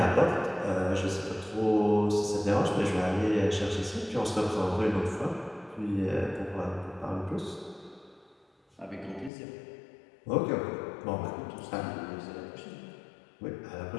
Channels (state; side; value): drops out; right; at 9.3 s